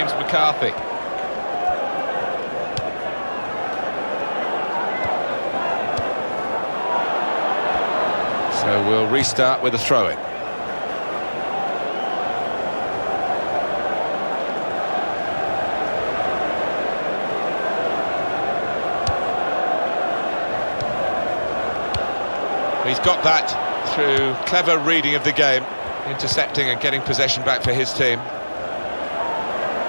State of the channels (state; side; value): inverted; both; correlation -1.00